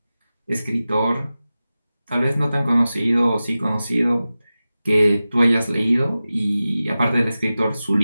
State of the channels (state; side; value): inverted; both; correlation -0.95